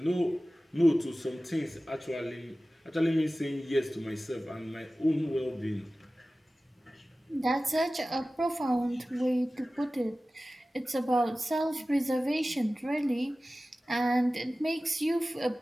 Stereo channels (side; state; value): both; normal; correlation 0.96